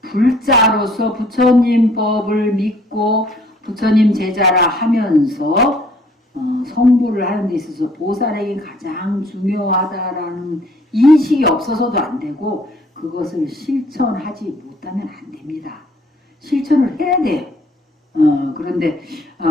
불자로서 부처님 법을 믿고 부처님 제자라 하면서 성불을 하는 데 있어서 보살행이 가장 중요하다라는 인식이 없어서도 안 되고 그것을 실천하지 못하면 안 됩니다. 실천을 해야 돼요. 그런데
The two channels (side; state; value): both; normal; correlation 0.60